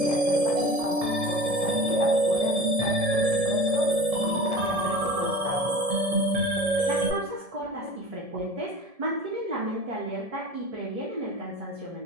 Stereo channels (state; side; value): late; left; 1.7 ms